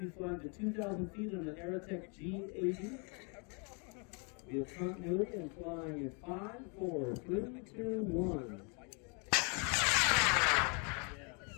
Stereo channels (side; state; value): right; quieter; 35.1 dB